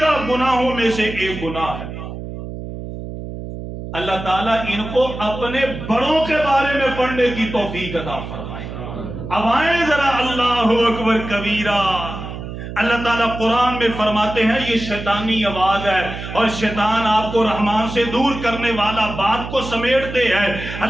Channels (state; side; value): noise; right; hum, 9 dB below the sound